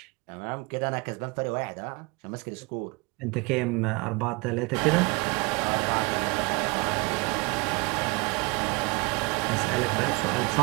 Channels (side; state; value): left; quieter; 27.4 dB